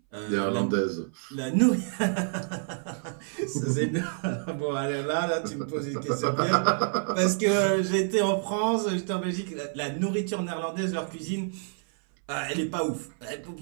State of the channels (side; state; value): left; silent; 59 dB below the other